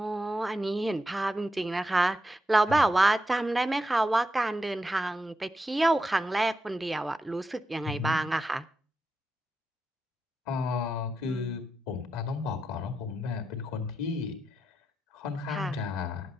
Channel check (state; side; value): normal; both; correlation 0.86